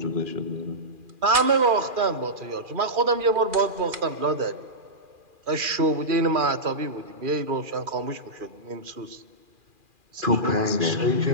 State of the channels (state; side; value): late; left; 2.4 ms